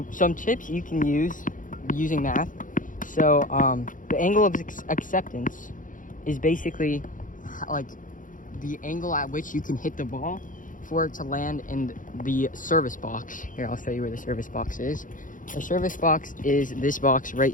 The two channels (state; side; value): late; right; 0.38 ms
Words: some tips you can use using math. So the angle of acceptance is basically like the angle at which you can hit the ball for it to land in the service box. Here, I'll show you where the service box is. The service box is this box right